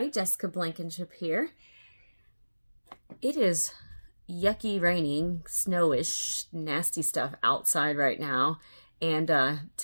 Jessica Blankenship here. It is yucky, raining, snowish, nasty stuff outside right now. And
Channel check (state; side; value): inverted; both; correlation -1.00